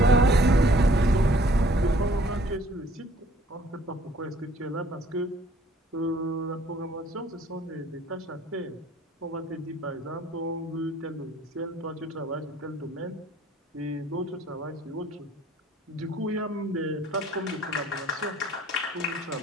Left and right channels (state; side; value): normal; both; correlation 0.58